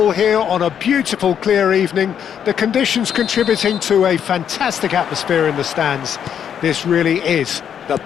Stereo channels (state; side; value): quieter; right; 8.6 dB